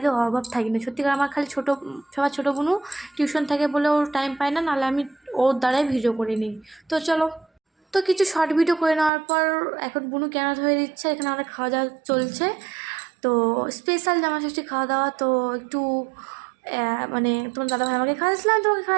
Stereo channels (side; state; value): left; drops out; at 9.1 s